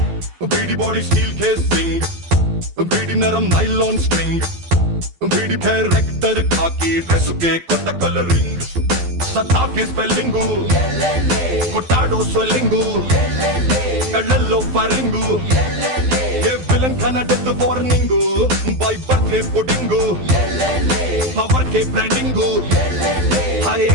వీడి body steel casing వీడి నరం నైలాన్ స్ట్రింగ్ వీడి క్యారెక్టర్ కాకి డ్రెస్ కే కొత్త కలరింగ్ సతా కే స్పెల్లింగ్ కొట్టాడో స్వెల్లింగ్ కళ్ళల్లో ఫరింగ్ ఏ విలన్ కన death warning by birthday pudding power కే బ్రాండింగ్ హై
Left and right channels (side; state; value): left; late; 12 ms